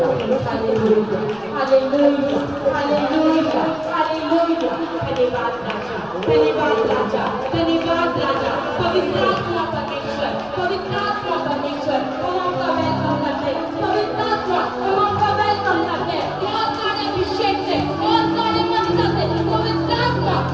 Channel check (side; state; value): left; noise; rumble, 27 dB below the sound